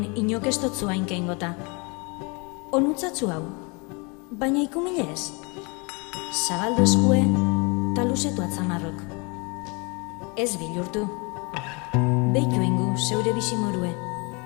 inok ez dotzu hainkein gota. Onutzatzu hau, baina ikumile ez. Zabaldu eskue, taluzetu atzamarrok. Ez bilurtu. Beitu ingu zeure bizimorue.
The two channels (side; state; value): right; quieter; 30.5 dB